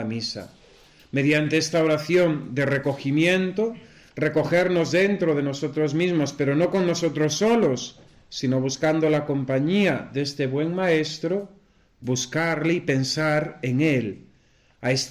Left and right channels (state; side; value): identical; both; correlation 1.00